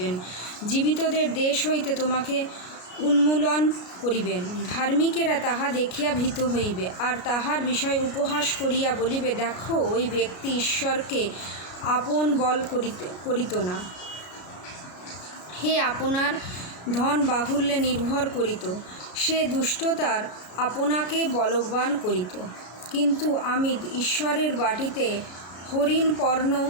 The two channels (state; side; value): late; right; 33 ms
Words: জীবিতদের দেশ হইতে তোমাকে উন্মূলন করিবেন। ধার্মিকেরা তাহা দেখিয়া ভীত হইবে, আর তাহার বিষয় উপহাস করিয়া বলিবে, দেখো, ওই ব্যক্তি ঈশ্বরকে আপন বল করিত না। হে আপনার ধন বাহুল্যে নির্ভর করিত, সে দুষ্টতার আপনাকে বলবান করিত। কিন্তু আমি ঈশ্বরের বাটিতে হরিণ পর্ণ